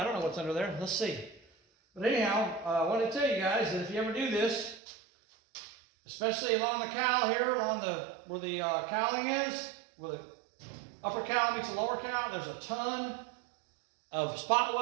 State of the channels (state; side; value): drops out; left; at 4.8 s